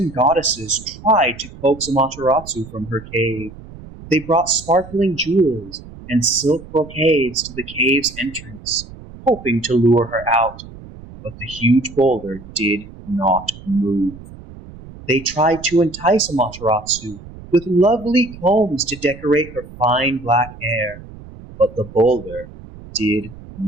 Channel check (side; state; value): right; noise; rumble, 17 dB below the sound